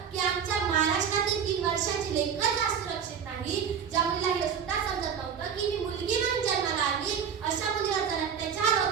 की आमच्या महाराष्ट्रातील 3 वर्षाची लेकरच आज सुरक्षित नाही. ज्या मुलीला हे सुद्धा समजत नव्हतं की मी मुलगी म्हणून जन्माला आली, अशा मुलीवर जर अत्याचार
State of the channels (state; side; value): quieter; left; 7.4 dB